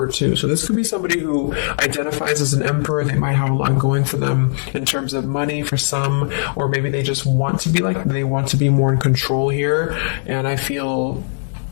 too. So this could be somebody who identifies as an Emperor. They might have a lot going for them in terms of money for some, or maybe they just want to be they want to be more in control here. And I feel,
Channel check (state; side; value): silent; right; 67 dB below the other